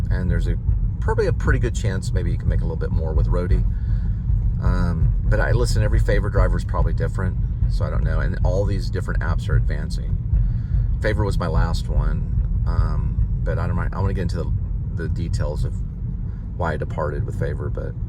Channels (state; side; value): identical; both; correlation 1.00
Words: and there's probably a pretty good chance maybe you can make a little bit more with Roadie. But I listen, every Favor driver is probably different, so I don't know. And all these different apps are advancing. Favor was my last one, but I don't mind. I want to get into the details of why I departed with Favor. But